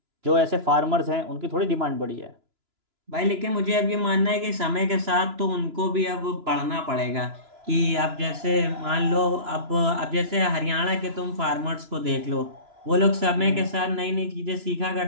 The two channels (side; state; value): left; late; 2.9 ms